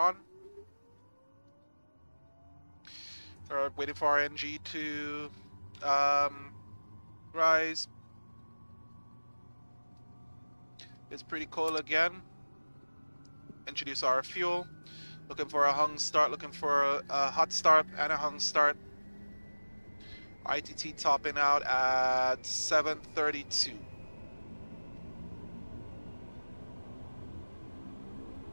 We're waiting for our NG to rise. It's pretty cold again. Introduce our fuel. Looking for a hung start, looking for a hot start and a hung start. ITT topping out at 732.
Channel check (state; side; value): inverted; both; correlation -1.00